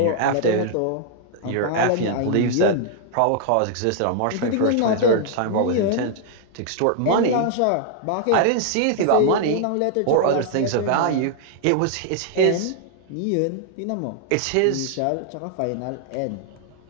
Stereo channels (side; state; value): both; different; correlation -0.01